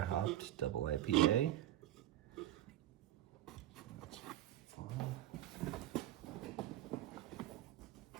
double IPA. That's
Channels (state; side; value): quieter; left; 13.5 dB